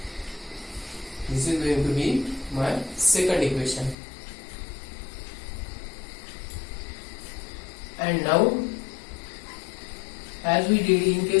This is going to be my second equation. And now, as we did in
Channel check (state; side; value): drops out; right; at 4.0 s